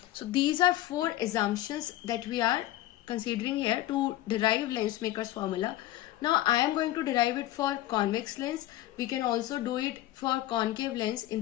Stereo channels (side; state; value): right; quieter; 14.9 dB